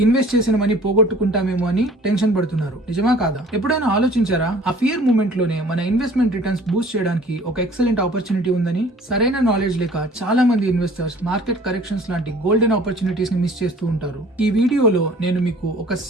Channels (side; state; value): both; normal; correlation 0.50